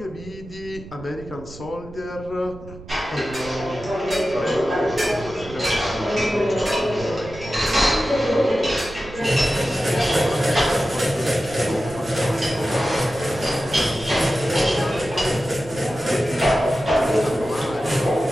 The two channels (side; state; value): right; noise; rumble, 16 dB below the sound